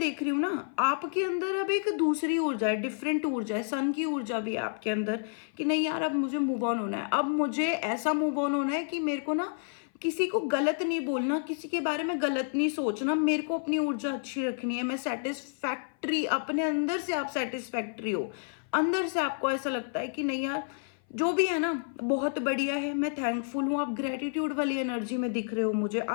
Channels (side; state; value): right; silent; 56 dB below the other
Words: रही हूँ ना आपके अंदर अब एक दूसरी ऊर्जा है, डिफरेंट ऊर्जा है, सन की ऊर्जा भी है आपके अंदर कि नहीं यार अब मुझे मूव ऑन होना है, अब मुझे ऐसा मूव ऑन होना है कि मेरे को ना किसी को गलत नहीं बोलना, किसी के बारे में गलत नहीं सोचना, मेरे को अपनी ऊर्जा अच्छी रखनी है, मैं सेटिस्फैक्ट्री, अपने अंदर से आप सेटिस्फैक्ट्री हो, अंदर से आपको ऐसा लगता है कि नहीं यार जो भी है ना बहुत बढ़िया है, मैं थैंकफुल हूँ। आप ग्रेटिट्यूड वाली एनर्जी में दिख रहे हो मुझे,